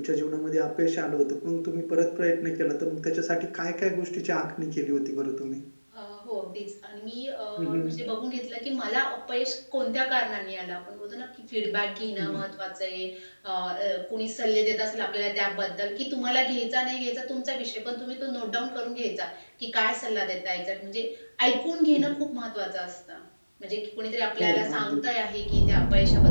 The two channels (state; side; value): inverted; both; correlation -1.00